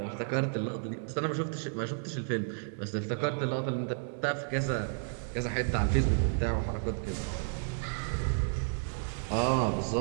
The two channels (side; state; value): left; silent; digital silence